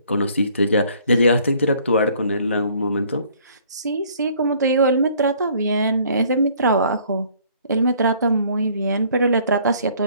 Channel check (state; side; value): inverted; both; correlation -0.59